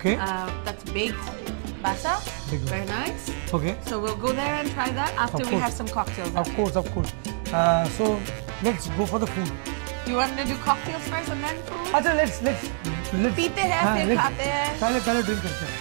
That's baked basa. Very nice. Okay. So we'll go there and try that after we have some cocktails. Of course. So let's go for the food. You want to do cocktails first and then food? अच्छा let's पीते हैं फिर खाते हैं पहले drink करते हैं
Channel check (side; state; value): left; silent; 61 dB below the other